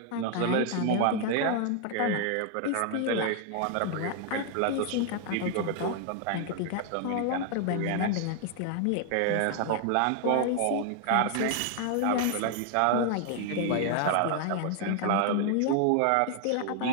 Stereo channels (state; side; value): different; both; correlation 0.00